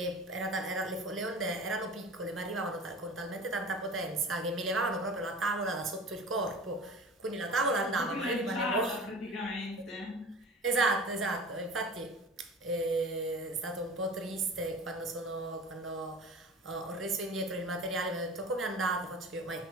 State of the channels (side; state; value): both; normal; correlation 0.38